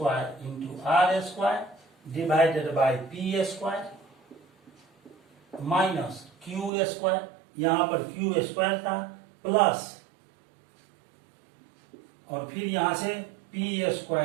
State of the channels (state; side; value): drops out; left; at 6.7 s